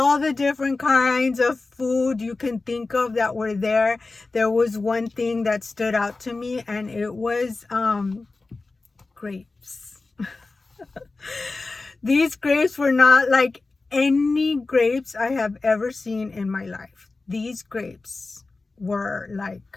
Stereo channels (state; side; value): quieter; right; 3.6 dB